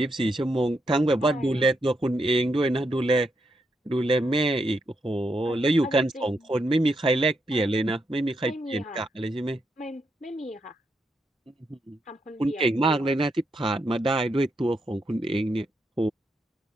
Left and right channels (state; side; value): normal; both; correlation 0.80